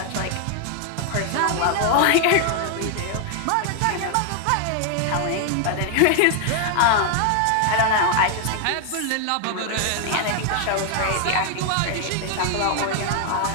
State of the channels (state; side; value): different; both; correlation 0.00